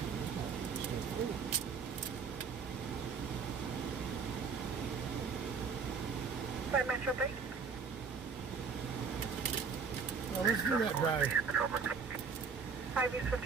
5 Metro 3. Well, let's do that drive. 5 East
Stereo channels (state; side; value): quieter; left; 5.6 dB